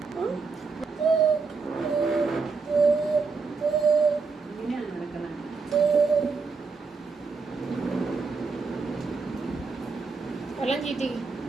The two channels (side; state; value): left; quieter; 4.6 dB